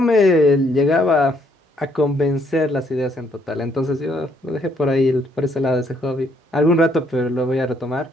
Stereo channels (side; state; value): both; normal; correlation 0.69